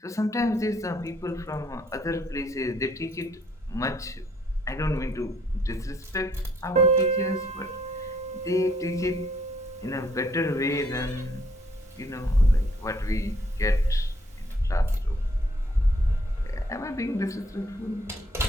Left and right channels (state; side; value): normal; both; correlation 0.66